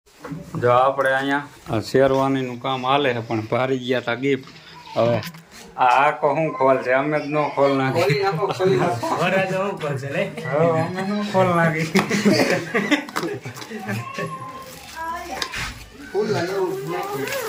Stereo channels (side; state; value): both; identical; correlation 1.00